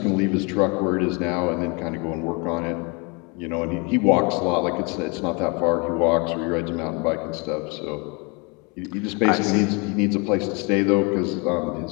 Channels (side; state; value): right; quieter; 30.8 dB